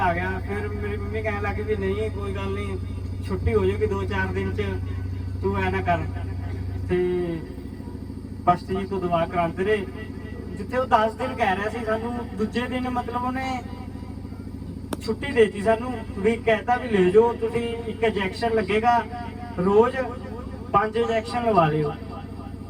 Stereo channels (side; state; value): both; identical; correlation 1.00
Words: ਗਿਆ। ਫਿਰ ਮੇਰੀ ਮੰਮੀ ਕਹਿਣ ਲੱਗੀ ਵੀ ਨਹੀਂ ਕੋਈ ਗੱਲ ਨਹੀਂ, ਛੁੱਟੀ ਹੋ ਜਾਊਗੀ 2-4 ਦਿਨ 'ਚ, ਤੂੰ ਐ ਨਾ ਕਰ। ਤੇ ਪਸ਼ਟ ਜੀ ਤੋਂ ਦਵਾ ਕਰਾਉਂਦੇ ਰਹੇ, ਜਿੱਥੇ ਉਹ 10 ਦਿਨ ਕਹਿ ਰਿਹਾ ਸੀ, ਸਾਨੂੰ ਦੂਜੇ ਦਿਨ ਮਤਲਬ ਉਹਨੇ ਛੁੱਟੀ ਦੇਤੀ ਸਾਨੂੰ, ਵੀ ਕਹਿਤਾ ਵੀ ਲੈ ਜਾਓ ਤੁਸੀਂ, ਇੱਕ ਇੰਜੈਕਸ਼ਨ ਲੱਗੇਗਾ ਰੋਜ਼, 5 ਇੰਜੈਕਸ਼ਨ ਲਵਾ ਲਿਓ।